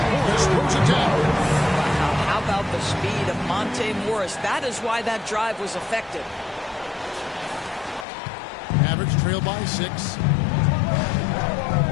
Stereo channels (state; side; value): drops out; right; at 8.1 s